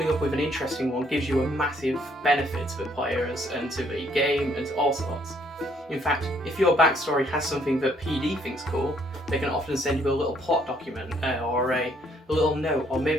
up with an interesting one gives you a massive benefit to the players and to the game and to all sorts. In fact, if your backstory has something that PD thinks cool, they can often send you a little plot document or a little note, or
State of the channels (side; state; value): both; normal; correlation 0.67